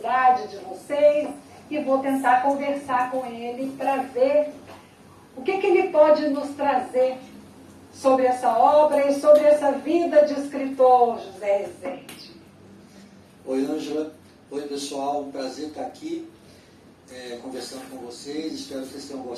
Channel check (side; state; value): both; identical; correlation 1.00